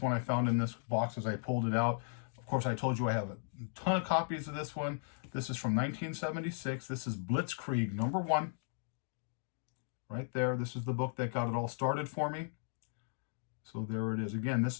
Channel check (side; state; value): right; silent; digital silence